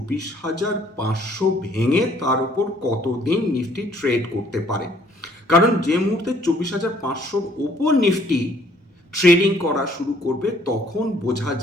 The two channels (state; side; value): normal; both; correlation 0.61